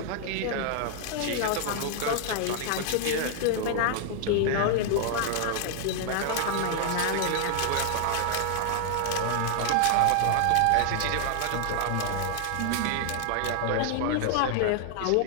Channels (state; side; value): different; both; correlation 0.00